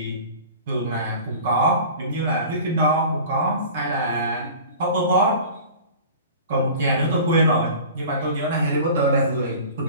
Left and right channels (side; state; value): both; inverted; correlation -0.40